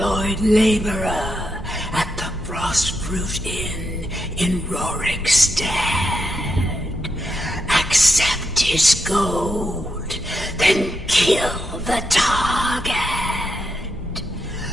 laborer at the Frostfruit Inn in Rorikstead. Accept his gold, then kill the target.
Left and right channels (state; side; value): normal; both; correlation 0.84